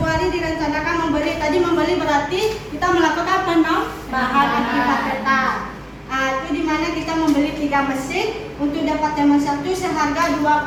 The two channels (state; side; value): identical; both; correlation 1.00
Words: direncanakan membeli berarti kita melakukan penambahan akibat tetap. Itu dimana kita membeli 3 mesin untuk Departemen 1 seharga